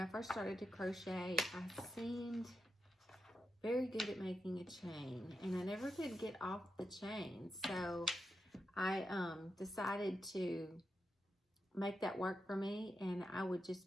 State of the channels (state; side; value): normal; both; correlation 0.87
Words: first started to crochet, I seemed very good at making a chain, and I never could get off the chain. So I decided to make that work for me, and I would just